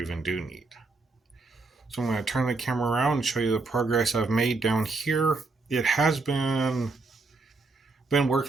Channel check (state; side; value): quieter; left; 3.7 dB